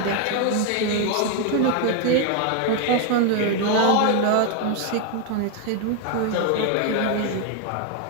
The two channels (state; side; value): different; both; correlation 0.01